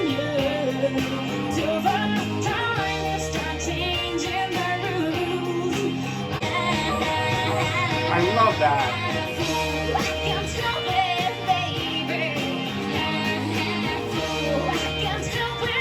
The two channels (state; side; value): identical; both; correlation 1.00